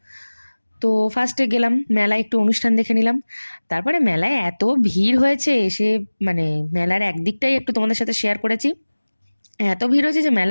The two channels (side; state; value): both; inverted; correlation -1.00